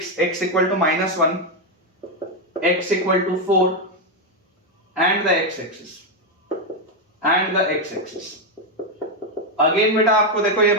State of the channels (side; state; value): both; normal; correlation 0.04